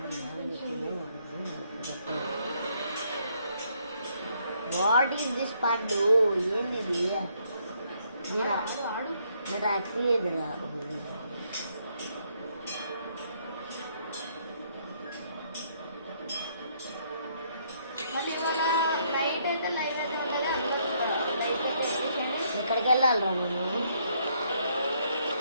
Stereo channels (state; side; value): inverted; both; correlation -0.70